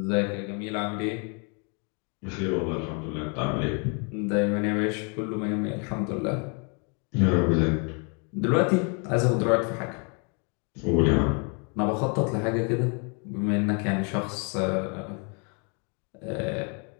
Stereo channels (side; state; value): right; quieter; 36.1 dB